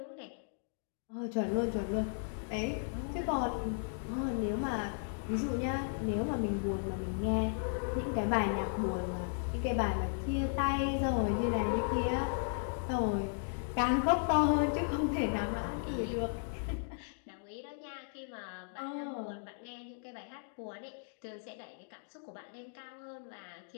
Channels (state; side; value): silent; right; digital silence